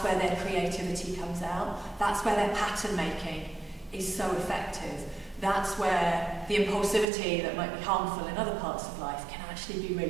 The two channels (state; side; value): drops out; left; at 7.1 s